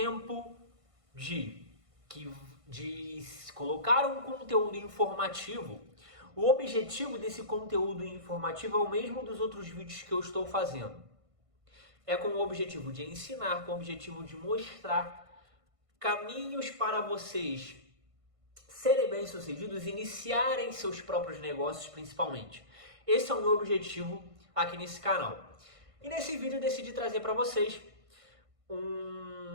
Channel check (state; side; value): late; left; 1.5 ms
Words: de colocar um conteúdo informativo. O objetivo desse conteúdo informativo é o mesmo dos outros vídeos que eu estou fazendo. É com o objetivo de ensinar, com o objetivo de mostrar caminhos para vocês serem bem-sucedidos, iniciarem seus próprios negócios principalmente. Esse é o meu objetivo aqui nesse canal. E nesse vídeo eu decidi trazer para vocês